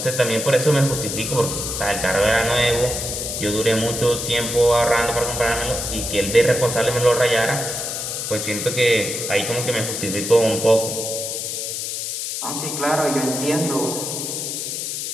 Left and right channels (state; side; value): noise; left; hiss, 4 dB below the sound